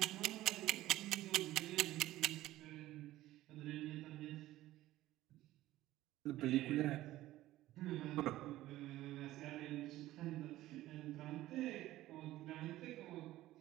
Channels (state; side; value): quieter; left; 15.6 dB